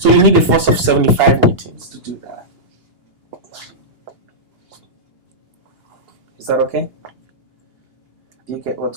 you need a force of 75 newtons to do that. Is that okay? Do you get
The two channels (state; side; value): late; left; 2.8 ms